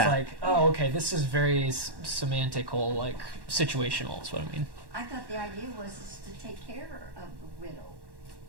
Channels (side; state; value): left; late; 1.1 ms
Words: like, oh, okay, this is very semantical, like situational. Is what I mean. I thought the idea was is to take care of the widow.